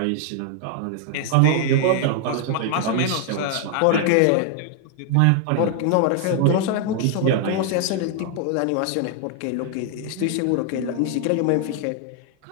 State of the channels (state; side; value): different; both; correlation 0.00